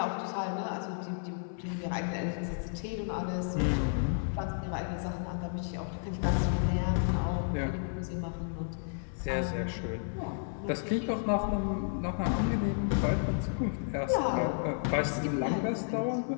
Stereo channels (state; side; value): silent; right; 56 dB below the other